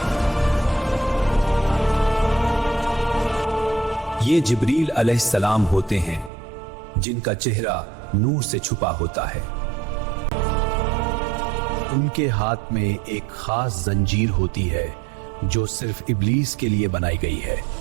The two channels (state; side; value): drops out; left; at 6.3 s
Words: ये जिब्रील अलैहिस्सलाम होते हैं, जिनका चेहरा नूर से छुपा होता है। उनके हाथ में एक खास जंजीर होती है जो सिर्फ इब्लीस के लिए बनाई गई है।